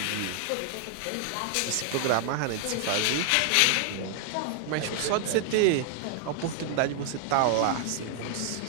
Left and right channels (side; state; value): both; different; correlation 0.00